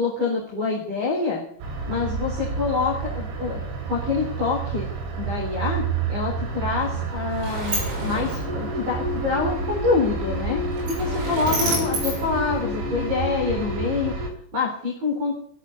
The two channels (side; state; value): left; late; 21 ms